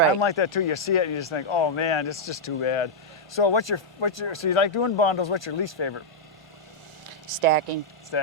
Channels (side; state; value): both; normal; correlation -0.06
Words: I'm like that too. You see it and you just think, oh man, it's just too bad. So so you like doing bundles, what's your least favorite? Stacking.